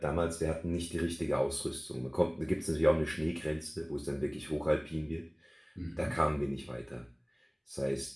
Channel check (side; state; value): both; identical; correlation 1.00